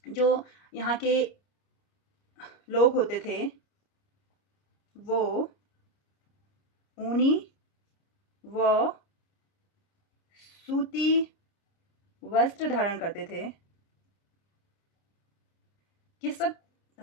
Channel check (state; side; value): late; right; 30 ms